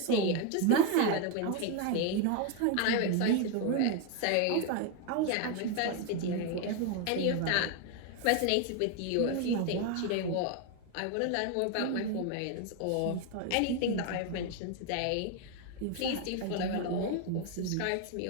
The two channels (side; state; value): both; different; correlation 0.01